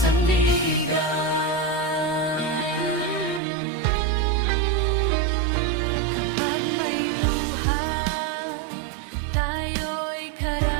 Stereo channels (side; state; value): left; drops out; at 3.4 s